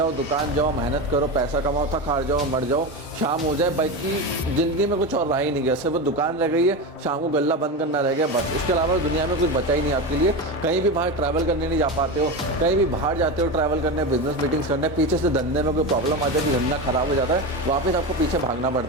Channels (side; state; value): both; normal; correlation 0.20